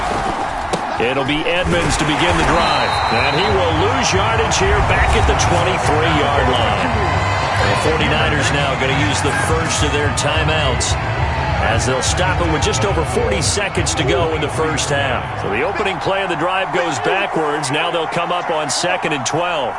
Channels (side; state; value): both; identical; correlation 1.00